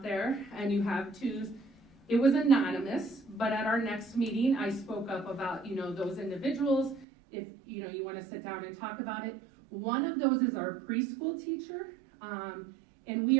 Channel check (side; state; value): left; drops out; at 7.1 s